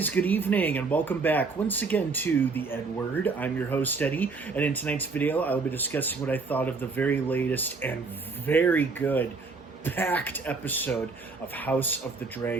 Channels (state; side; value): quieter; left; 4.3 dB